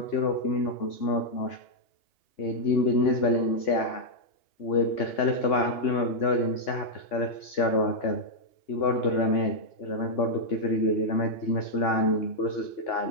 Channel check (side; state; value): right; late; 2.8 ms